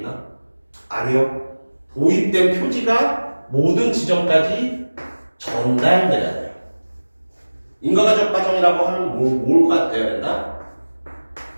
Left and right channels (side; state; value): both; inverted; correlation -1.00